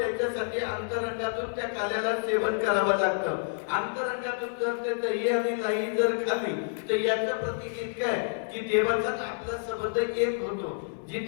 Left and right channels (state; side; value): silent; right; 59 dB below the other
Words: अंतरंगातून त्या काल्याला सेवन करावं लागतं. अंतरंगातून जर ते दही आणि लाई जर खाली तर याचं प्रतीक इतकं आहे की देवाचा आपला संबंध एक होतो.